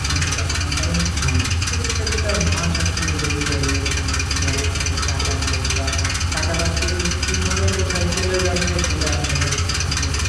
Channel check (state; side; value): identical; both; correlation 1.00